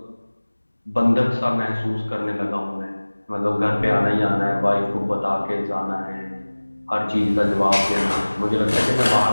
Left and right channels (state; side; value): inverted; both; correlation -1.00